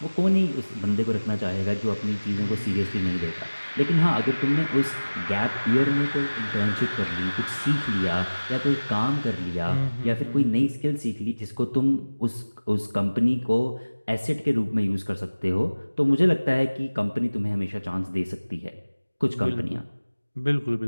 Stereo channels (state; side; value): inverted; both; correlation -1.00